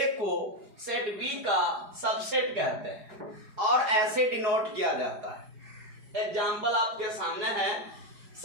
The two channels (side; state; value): left; late; 4.8 ms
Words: को सेट बी का सबसेट कहते हैं और ऐसे डिनोट किया जाता है। एग्जाम्पल आपके सामने है,